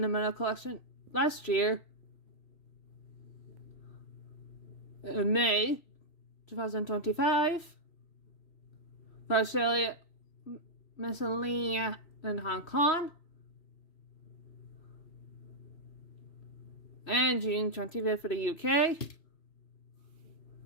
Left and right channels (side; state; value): right; late; 3.1 ms